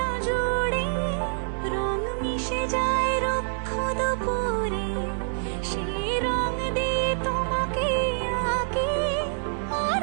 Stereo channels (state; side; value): silent; left; 61 dB below the other